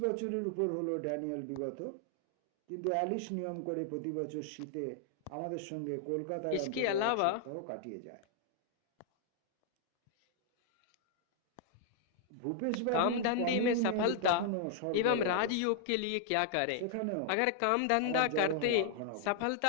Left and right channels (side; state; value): both; different; correlation 0.00